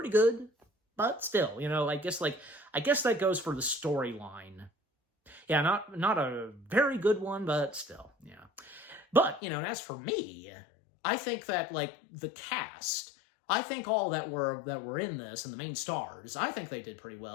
good, but still, you know, I guess that goes for the storyline. Yeah, not a very good one, but still, yeah. But, you know, and as for me, I think that, like, the cast, I think all that were in this, and the main stars, I think they did pretty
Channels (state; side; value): drops out; right; at 9.4 s